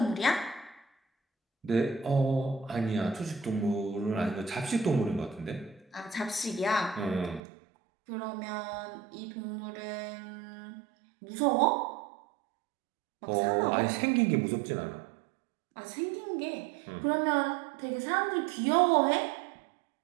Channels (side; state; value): left; drops out; at 7.4 s